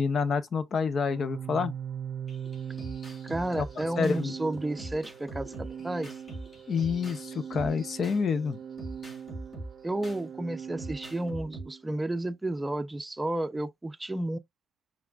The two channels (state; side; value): normal; both; correlation 0.85